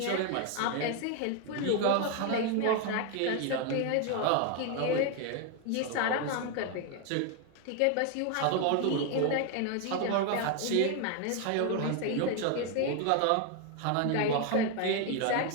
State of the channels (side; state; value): both; different; correlation 0.01